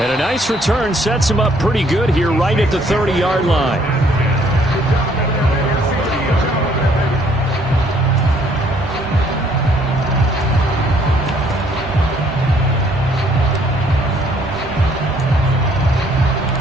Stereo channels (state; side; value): normal; both; correlation 0.64